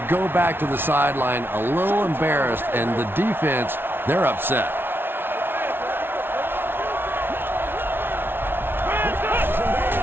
go back to the sideline a little embarrassed, and the defense, they're upset.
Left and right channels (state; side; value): late; left; 0.11 ms